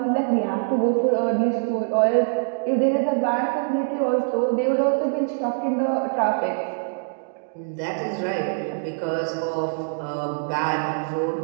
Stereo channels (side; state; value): left; silent; digital silence